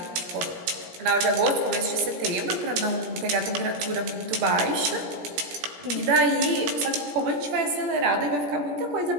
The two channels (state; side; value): late; left; 17 ms